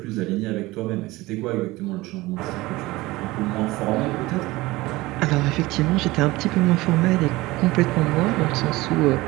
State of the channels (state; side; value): quieter; left; 19.8 dB